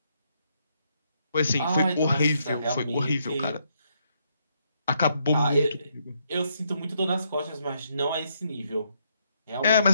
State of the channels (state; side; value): inverted; both; correlation -0.76